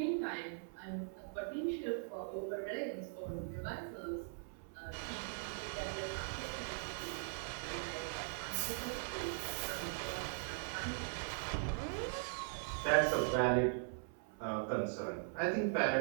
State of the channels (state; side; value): silent; left; 51 dB below the other